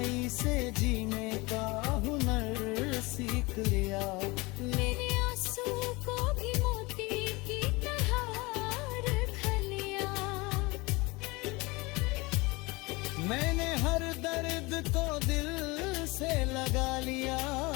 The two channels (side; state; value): right; quieter; 24.3 dB